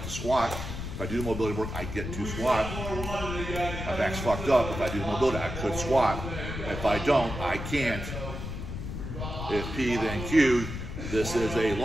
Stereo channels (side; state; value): left; noise; rumble, 6 dB below the sound